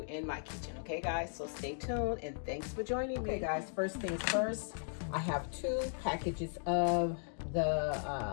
in my kitchen. Okay, guys, so stay tuned and thanks for joining me. Okay, guys, first things first, I have 2 packages of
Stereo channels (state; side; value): silent; right; digital silence